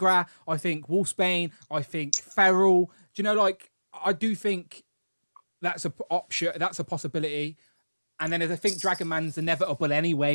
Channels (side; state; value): both; inverted; correlation -1.00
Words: I think Wolfsbane, I think Feral. Do you know, like, I do think that's a option. That's a possibility. And then I think Dragon Man's inevitable